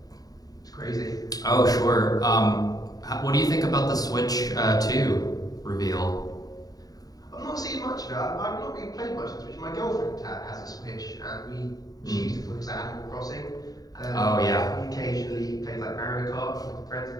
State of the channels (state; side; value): late; right; 0.18 ms